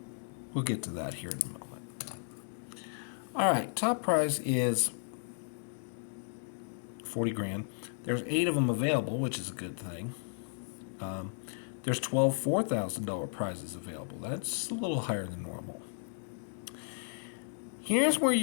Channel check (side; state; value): right; silent; digital silence